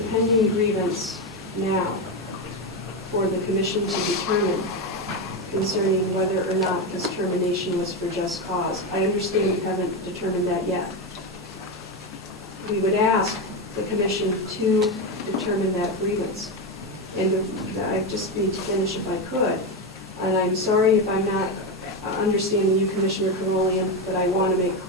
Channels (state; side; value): normal; both; correlation 0.12